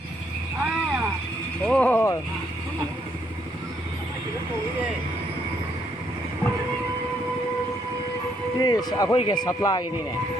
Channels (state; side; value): normal; both; correlation 0.72